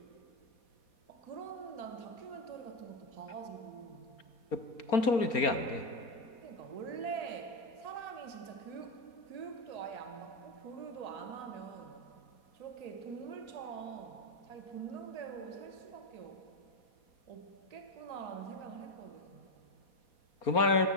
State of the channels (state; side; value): late; right; 4.3 ms